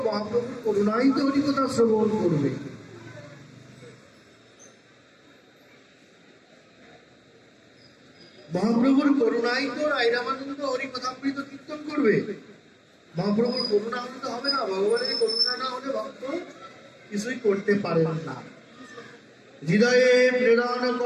মহাপ্রভুর করুণাই তো হরিকথা শ্রবণ করবে। মহাপ্রভুর করুণাই তো রাই রামানন্দ হরিকথামৃত কীর্তন করবে। মহাপ্রভুর করুণা হলে তো হবে না, ভগবানের করুণা না হলে ভক্ত কিছুই করতে পারেন না। হৃদয়ে প্রেরণ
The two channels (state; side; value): identical; both; correlation 1.00